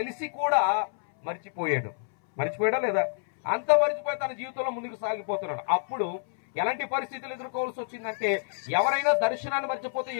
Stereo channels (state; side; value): silent; right; 59 dB below the other